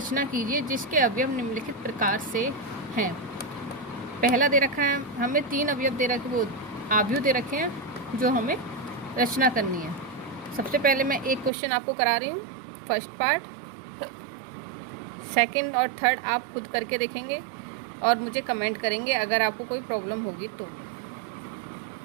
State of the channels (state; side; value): drops out; left; at 11.5 s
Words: कीजिए जिसके अवयव निम्नलिखित प्रकार से हैं। पहला दे रखा है हमें 3 अवयव दे रखे, वो आव्यू दे रखे हैं जो हमें रचना करनी है। सबसे पहले मैं एक क्वेश्चन आपको करा रही हूँ, फर्स्ट पार्ट। सेकंड और थर्ड आप खुद करके देखेंगे और मुझे कमेंट करेंगे अगर आपको कोई प्रॉब्लम होगी तो।